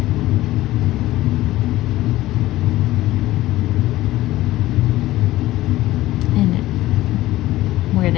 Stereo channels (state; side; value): quieter; right; 16.3 dB